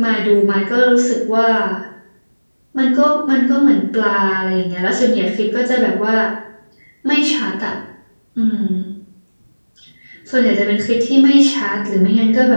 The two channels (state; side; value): inverted; both; correlation -1.00